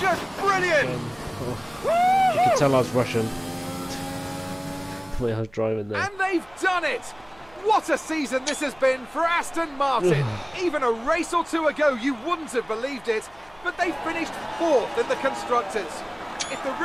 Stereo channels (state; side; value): noise; right; hum, 27 dB below the sound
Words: brilliant. You can tell I was Russian. The way I was driving there. And they've done it! What a season this has been for Aston Martin. Even a race or two ago, you wouldn't have believed it, but they finished 4th in the Constructors. If the